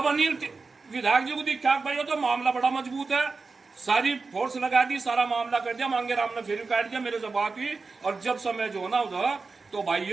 अनिल विधायक जी को दिखा भाई तो मामला बड़ा मजबूत है, सारी फोर्स लगा दी, सारा मामला कर दिया। मांगेराम ने फिर काट दिया, मेरे से बात हुई, और जब समय जो ना उधर तो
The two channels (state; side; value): quieter; left; 4.2 dB